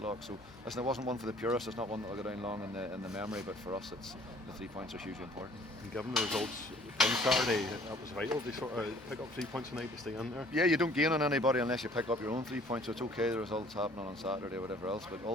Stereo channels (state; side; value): normal; both; correlation 0.55